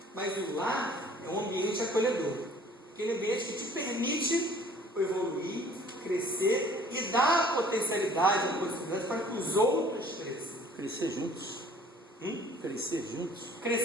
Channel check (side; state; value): both; normal; correlation 0.53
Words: Mas o lar é um ambiente acolhedor, aquele ambiente que te permite evoluir, crescer e dar a potencialidade, a possibilidade para que os outros cresçam. Crescer juntos. Crescer juntos.